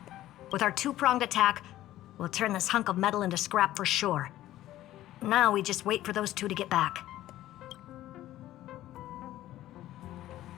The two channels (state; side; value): quieter; right; 14.3 dB